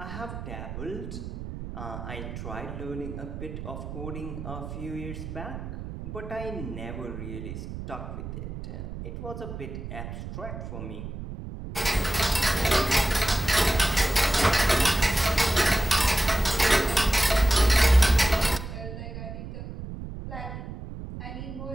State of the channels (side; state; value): right; noise; rumble, 9 dB below the sound